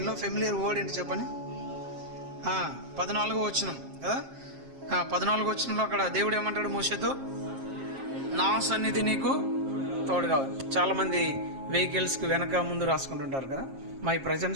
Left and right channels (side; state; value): left; late; 7.3 ms